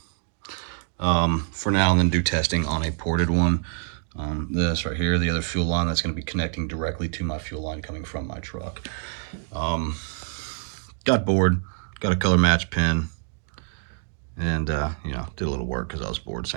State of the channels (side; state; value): left; silent; 61 dB below the other